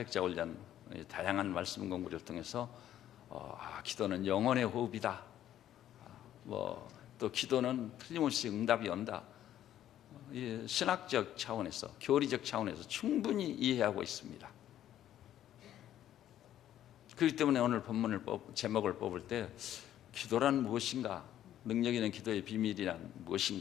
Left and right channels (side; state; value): right; quieter; 11.7 dB